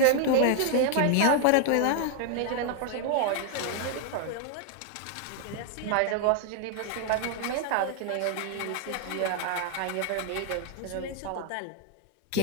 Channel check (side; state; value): both; different; correlation 0.00